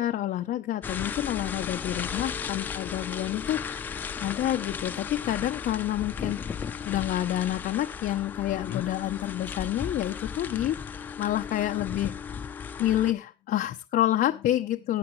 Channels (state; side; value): quieter; right; 11.2 dB